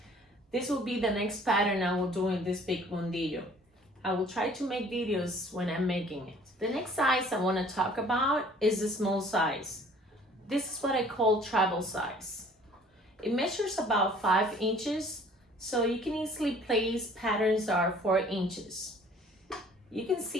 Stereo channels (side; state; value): both; normal; correlation 0.54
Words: This will be the next pattern I will do in this big mundillo. I will try to make videos when I'm making it. The next size I want to talk about is the small size. This is what I call travel size. It measures about 5 inches, so you can easily place patterns that are 4 inches. You can